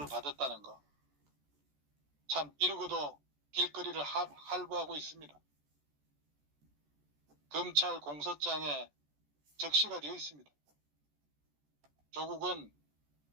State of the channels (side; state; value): left; late; 14 ms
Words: 받았다는 거. 참 이러고도 길거리를 할부하고 있습니다. 검찰 공소장에 적시가 되어 있습니다. 조국은